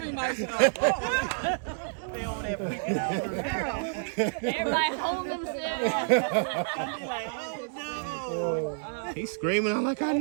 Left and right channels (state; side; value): silent; left; digital silence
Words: myself. They over there freaking out. Everybody hold themselves. Be like, oh no. He's screaming. I'm like, I